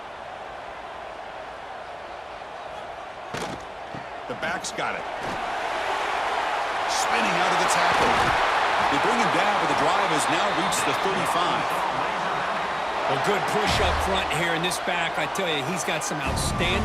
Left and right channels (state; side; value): identical; both; correlation 1.00